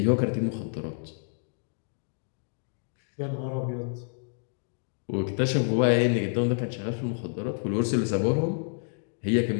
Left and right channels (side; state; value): right; silent; digital silence